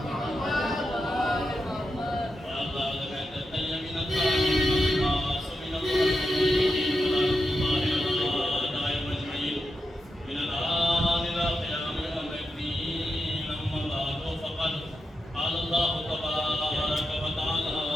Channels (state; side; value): normal; both; correlation 0.88